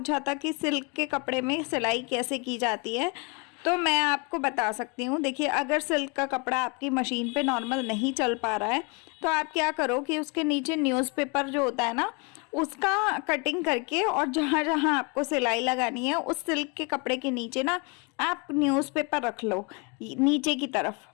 था कि सिल्क के कपड़े में सिलाई कैसे की जाती है। तो मैं आपको बता सकती हूँ। देखिए, अगर सिल्क का कपड़ा आपकी मशीन पे नॉर्मल नहीं चल पा रहा है तो आप क्या करो कि उसके नीचे न्यूज़पेपर जो होता है ना, उसका कटिंग करके, और जहाँ जहाँ आपको सिलाई लगानी है उस सिल्क के कपड़े के नीचे ना आप न्यूज़पेपर रख लो नीचे की तरफ।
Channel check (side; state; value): right; quieter; 30.6 dB